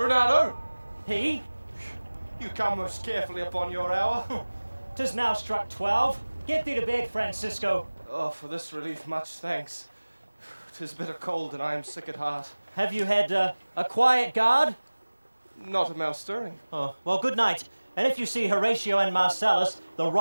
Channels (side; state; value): both; inverted; correlation -1.00